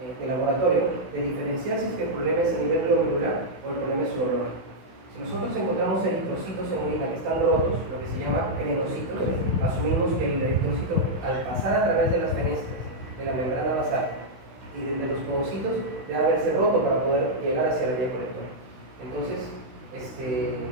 de laboratorio, de diferenciar si es que el problema es a nivel glomerular o el problema es urológico. Si nosotros encontramos eritrocitos en orina que están rotos, lo que se llama crenocitos, asumimos que el eritrocito, al pasar a través de las fenestras de la membrana basal y de los podocitos, debe haberse roto para poder llegar hacia la vía colectora. Entonces,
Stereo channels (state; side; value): late; left; 16 ms